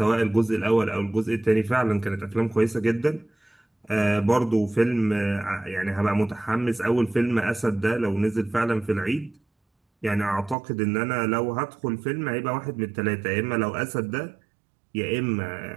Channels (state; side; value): drops out; left; at 10.6 s